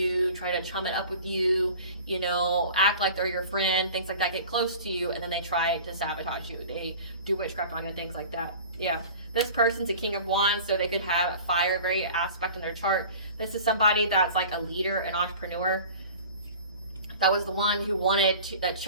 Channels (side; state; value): both; inverted; correlation -0.42